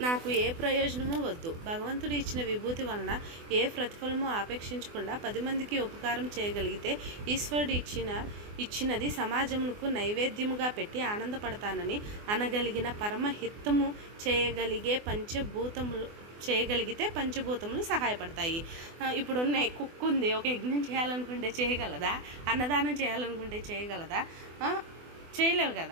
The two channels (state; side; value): late; left; 24 ms